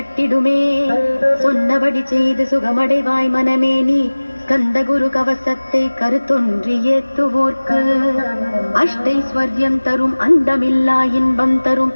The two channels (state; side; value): inverted; both; correlation -1.00